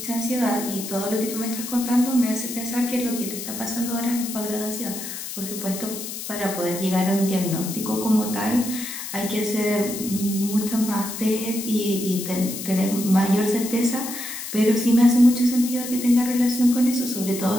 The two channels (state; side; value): noise; left; hiss, 8 dB below the sound